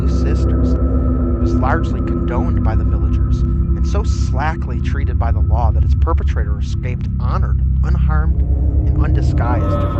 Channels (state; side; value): identical; both; correlation 1.00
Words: sisters, was largely condoned by the villagers, and so slackly treated by the law that its perpetrator escaped honored, unharmed, and undisguised to